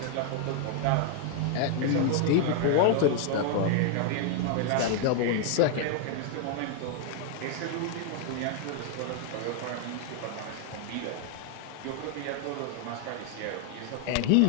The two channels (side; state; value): both; different; correlation 0.00